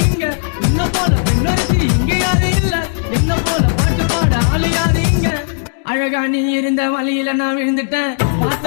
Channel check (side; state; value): right; silent; digital silence